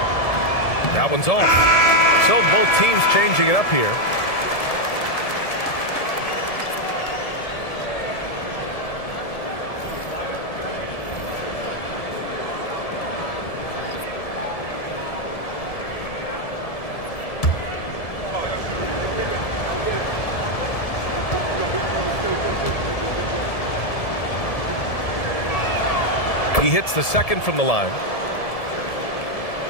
That one's off. So both teams changing it up here. He hits the second from the line.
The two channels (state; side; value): late; right; 1.7 ms